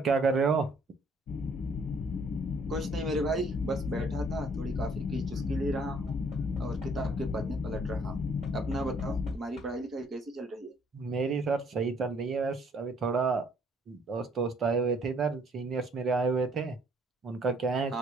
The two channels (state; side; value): normal; both; correlation 0.63